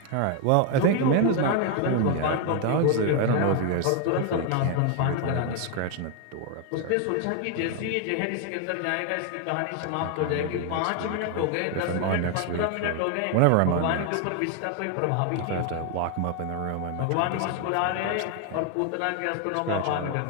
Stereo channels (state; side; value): different; both; correlation 0.01